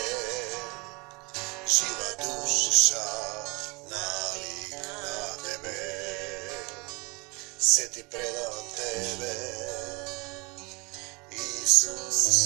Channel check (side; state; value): left; quieter; 27.8 dB